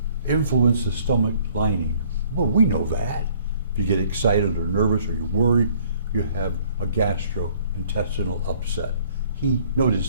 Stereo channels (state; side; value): inverted; both; correlation -0.59